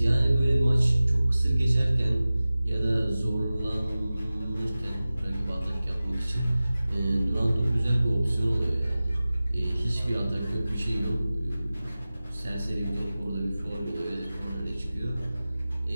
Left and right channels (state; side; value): inverted; both; correlation -0.96